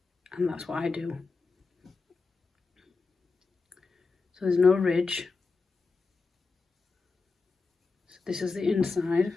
and that's what I do. So there's no ridge. So this is the inside.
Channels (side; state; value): right; quieter; 4.2 dB